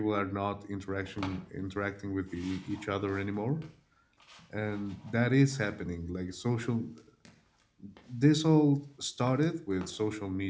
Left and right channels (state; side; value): identical; both; correlation 1.00